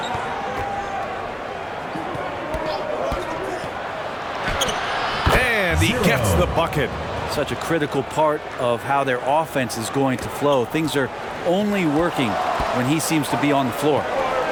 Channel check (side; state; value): both; identical; correlation 1.00